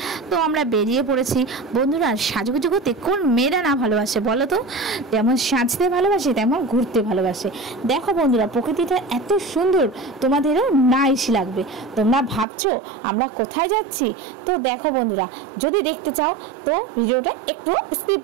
তো আমরা বেরিয়ে পড়েছি। বন্ধুরা, সাজুগুজু করতে কোন মেয়েরা না ভালোবাসে বলো তো? যেমন সাজতে ভালোবাসে তেমন ঘুরতে ভালোবাসে। দেখো বন্ধুরা, প্রকৃতিটা এত সুন্দর, তোমাদেরও নাইস লাগবে। তোমরা ভাবছো আমরা কোথায় যাচ্ছি? তো দেখো বন্ধুরা, যদি দেখতে চাও তো ভিডিওটা একটু স্কিপ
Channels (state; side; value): drops out; left; at 12.5 s